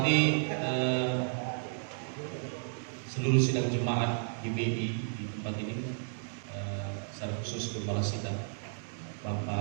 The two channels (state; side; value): silent; left; digital silence